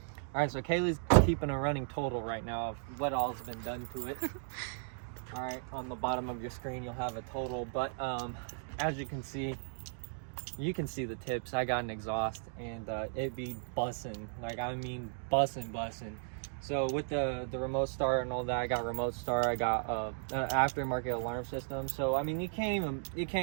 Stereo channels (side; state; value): left; silent; digital silence